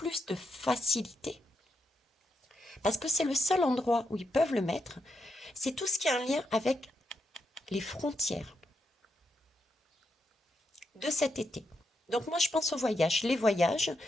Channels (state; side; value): normal; both; correlation 0.82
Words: de facilité, parce que c'est le seul endroit où ils peuvent le mettre. C'est tout ce qui a un lien avec les frontières de cet été. Donc moi, je pense aux voyages. Les voyages